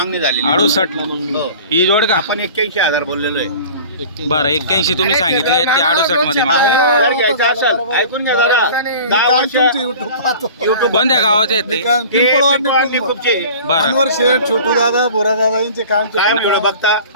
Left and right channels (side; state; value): both; inverted; correlation -0.42